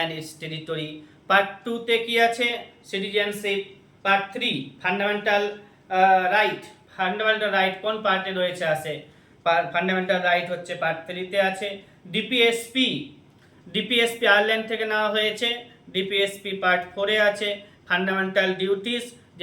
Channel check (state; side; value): identical; both; correlation 1.00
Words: its territory. Part 2-তে কি আছে? Citizenship. Part 3 fundamental right. Fundamental right কোন পার্টে রয়েছে? আছে ফান্ডামেন্টাল রাইট হচ্ছে পার্ট 3-তে আছে। ডিপিএসপি আয়ারল্যান্ড থেকে নেওয়া হয়েছে। ডিপিএসপি পার্ট 4-এ আছে। ফান্ডামেন্টাল ডিউটিস,